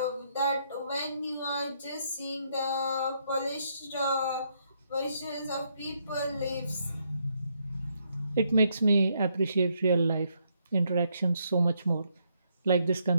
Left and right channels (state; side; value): inverted; both; correlation -0.75